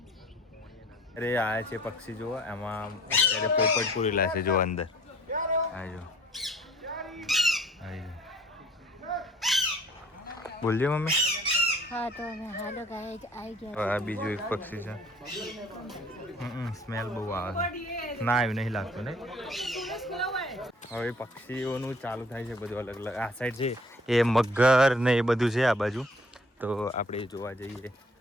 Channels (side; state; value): both; normal; correlation 0.55